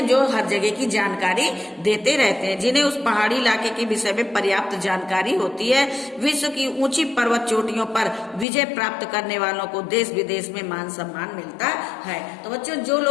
जो हर जगह की जानकारी देते रहते हैं, जिन्हें उस पहाड़ी इलाके के विषय में पर्याप्त जानकारी होती है। विश्व की ऊंची पर्वत चोटियों पर विजय प्राप्त करने वालों को देश विदेश में मान सम्मान मिलता है। तो बच्चों, जो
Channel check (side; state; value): right; drops out; at 8.5 s